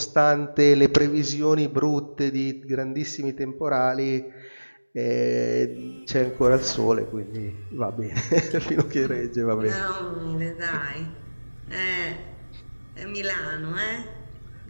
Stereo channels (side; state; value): both; inverted; correlation -1.00